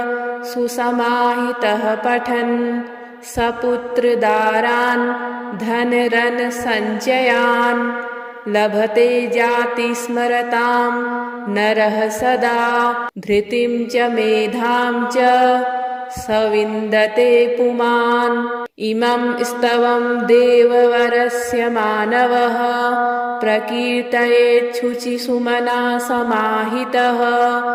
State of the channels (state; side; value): identical; both; correlation 1.00